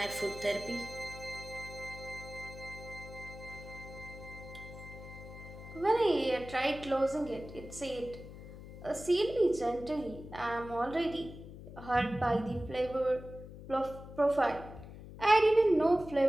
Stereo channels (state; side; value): noise; left; hum, 14 dB below the sound